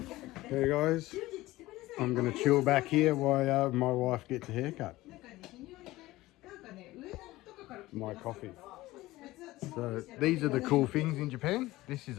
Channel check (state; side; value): quieter; right; 18.0 dB